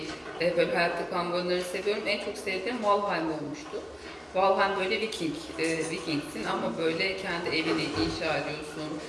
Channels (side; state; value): both; identical; correlation 1.00